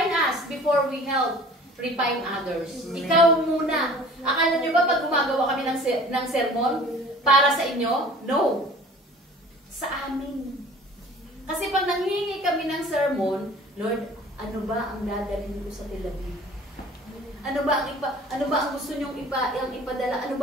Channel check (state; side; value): normal; both; correlation 0.46